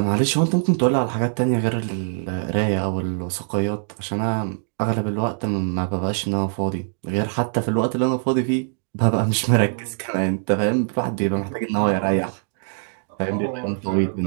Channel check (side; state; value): left; silent; digital silence